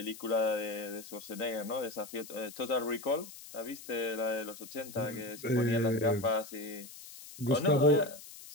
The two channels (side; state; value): left; noise; hiss, 15 dB below the sound